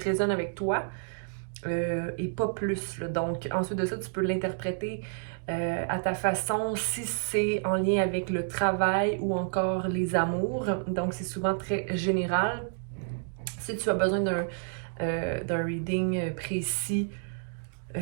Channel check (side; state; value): left; silent; digital silence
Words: avec toi et pas plus. Là. Donc ensuite de ça, tu peux l'interpréter à ta façon si c'est en lien avec le travail ou encore les amours. Donc c'est souvent très général. Si tu as besoin d'un reading précis,